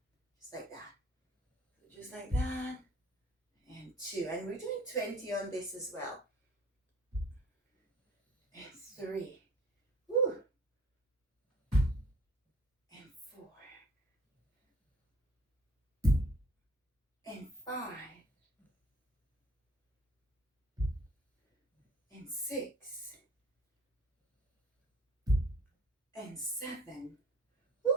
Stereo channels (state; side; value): normal; both; correlation 0.53